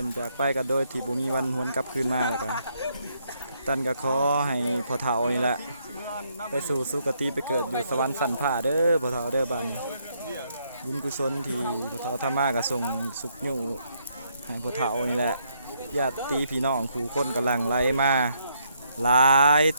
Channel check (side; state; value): both; inverted; correlation -0.73